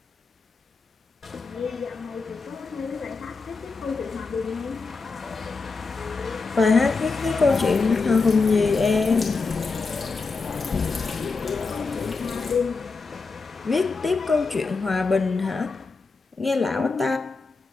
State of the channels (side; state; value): right; quieter; 4.3 dB